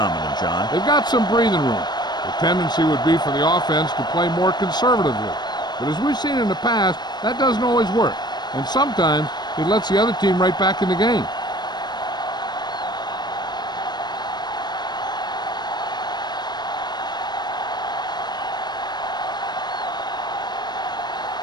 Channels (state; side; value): late; right; 0.21 ms